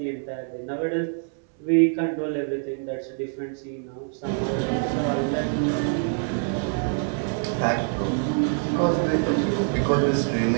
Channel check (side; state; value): left; silent; 56 dB below the other